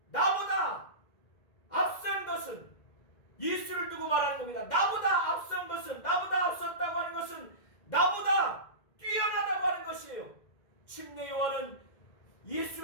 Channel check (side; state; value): right; late; 2.1 ms